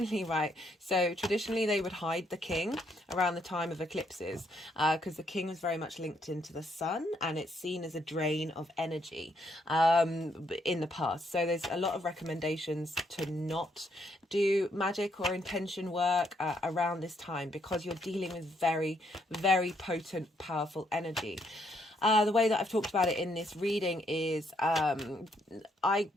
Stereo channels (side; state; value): both; normal; correlation 0.73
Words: right? So traditionally they would hide the king around the time of eclipses, because the king was very much linked into the sun, and it's seen as a drain of energy in the past. So there's a lot of recommendations to not do magic or intention work around this time, because you're dealing with very, very potent, powerful energy. The way that I've talked about it in this reading is there